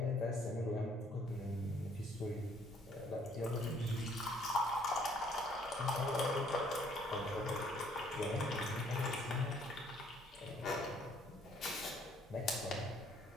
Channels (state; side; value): normal; both; correlation 0.63